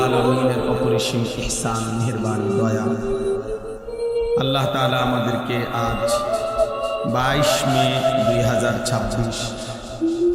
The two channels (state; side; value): identical; both; correlation 1.00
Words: আলামিনের অপরিসীম ইহসান, মেহেরবানি, দয়া। আল্লাহ তাআলা আমাদেরকে আজ 22 মে 2026